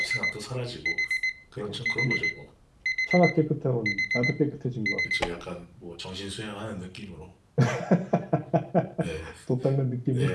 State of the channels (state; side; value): identical; both; correlation 1.00